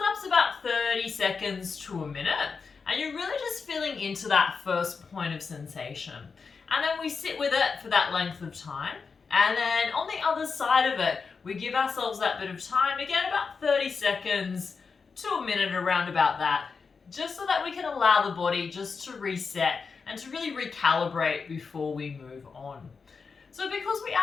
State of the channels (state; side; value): quieter; right; 5.1 dB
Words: about 30 seconds to a minute, and you're really just feeling into that first point of sensation. And then we sit with it for that length of time. And then on the other side of it, we give ourselves that bit of time, again, about 30 seconds to a minute, around about that, just so that we can allow the body just to reset and to really recalibrate before we move on. So because we